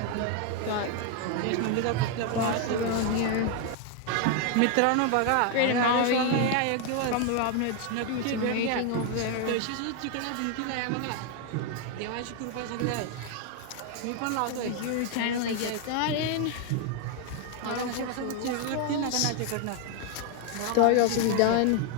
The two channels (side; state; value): both; different; correlation 0.01